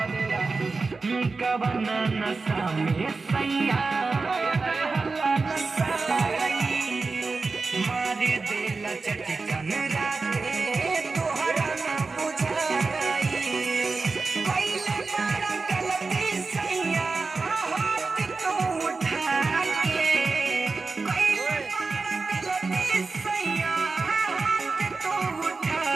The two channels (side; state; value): left; quieter; 4.0 dB